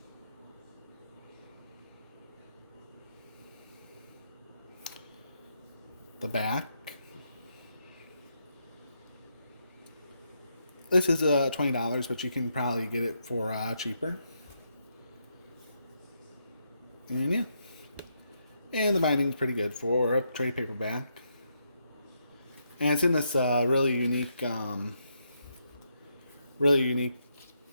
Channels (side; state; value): both; inverted; correlation -0.80